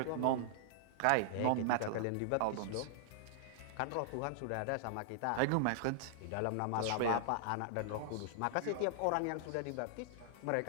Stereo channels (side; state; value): both; different; correlation -0.01